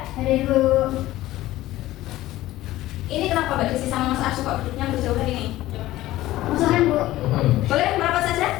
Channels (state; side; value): quieter; right; 16.0 dB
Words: Hadir Bu. Ini kenapa Mbak Desi sama Mas Arju kok duduknya berjauhan ini? Musuhan Bu. Boleh merapat